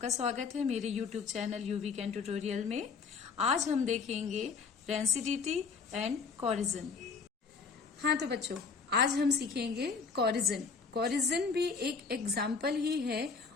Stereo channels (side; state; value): right; quieter; 5.1 dB